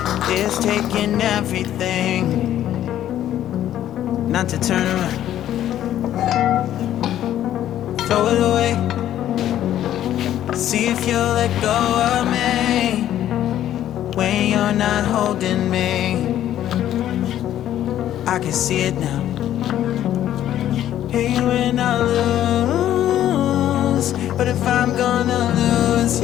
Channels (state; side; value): quieter; right; 11.8 dB